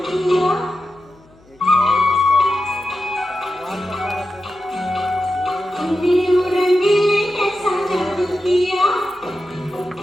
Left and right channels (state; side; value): noise; left; hum, 29 dB below the sound